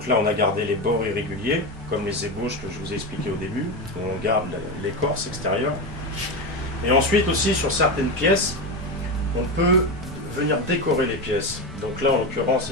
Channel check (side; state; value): both; normal; correlation 0.16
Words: là on a gardé les bords irréguliers, comme les ébauches que je vous ai expliqué au début. On garde l'écorce extérieure. Et ensuite aussi sur certaines pièces, on peut venir décorer les pièces. Donc là en l'occurrence